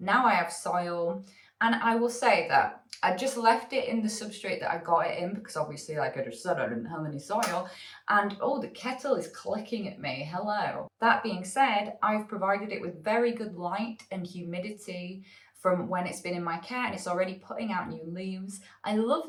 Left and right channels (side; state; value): both; identical; correlation 1.00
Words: I have soil, and I will say that I just left it in the substrate that I got it in, because obviously, like I just said, I didn't have any soil. And oh, the kettle is clicking at me. Hello. That being said, I've provided it with very good light and humidity from when it's been in my care, and it's already putting out new leaves. I love